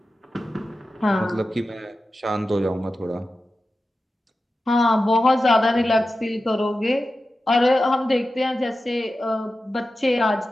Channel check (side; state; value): both; normal; correlation 0.93